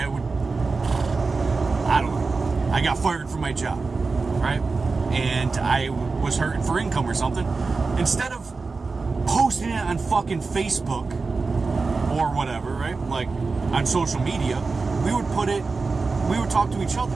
don't know, I got fired from my job, right? And I was hurting for income or something. Instead of posting it on fucking Facebook or whatever, right? Like on social media, we would talk to each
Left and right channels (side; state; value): left; quieter; 4.2 dB